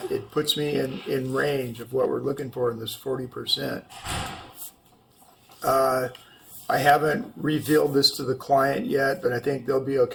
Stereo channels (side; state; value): both; identical; correlation 1.00